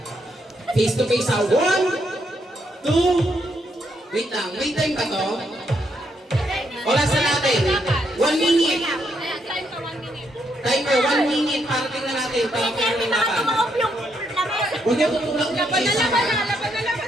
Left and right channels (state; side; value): normal; both; correlation 0.77